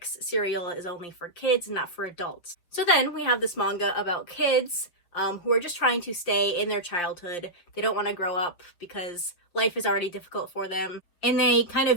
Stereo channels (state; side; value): late; right; 6.0 ms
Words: cereal is only for kids and not for adults. So then we have this manga about kids who are just trying to stay in their childhood. They don't want to grow up because life is already difficult for them. And they kind